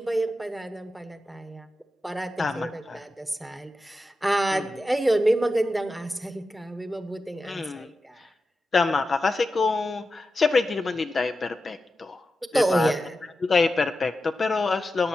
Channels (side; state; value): both; normal; correlation 0.91